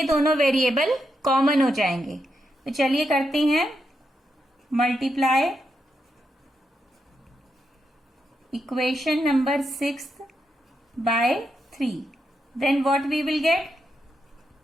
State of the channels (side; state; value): both; normal; correlation 0.83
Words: दोनों वेरिएबल कॉमन हो जाएंगे। तो चलिए करते हैं multiply equation number 6 by 3। Then what we will